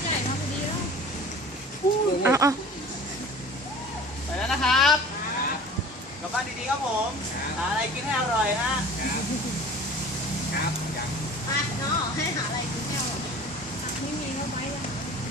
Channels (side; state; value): both; normal; correlation 0.43